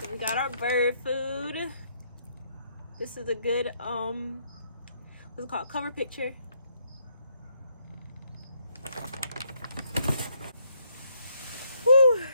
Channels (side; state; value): both; inverted; correlation -0.72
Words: we got our bird food. This is a good, what's it called? Cover picture. Whew.